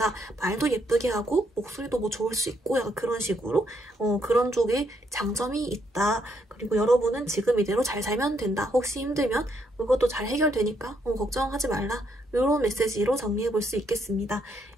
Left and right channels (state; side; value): normal; both; correlation 0.74